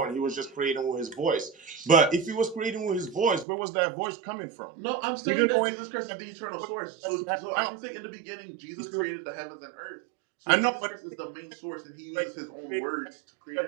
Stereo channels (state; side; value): drops out; left; at 3.5 s